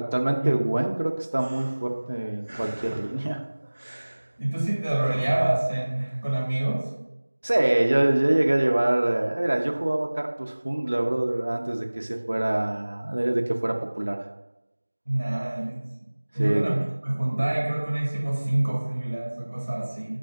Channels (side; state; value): both; inverted; correlation -1.00